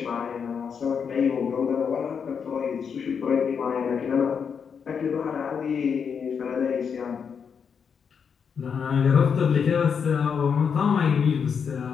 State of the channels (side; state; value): right; quieter; 6.6 dB